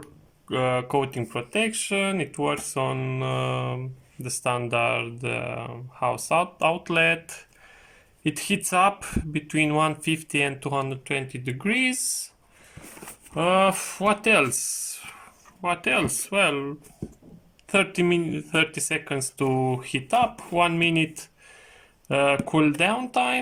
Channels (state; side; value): identical; both; correlation 1.00